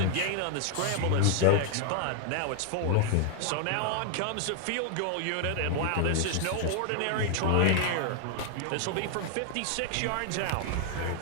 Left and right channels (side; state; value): both; different; correlation 0.00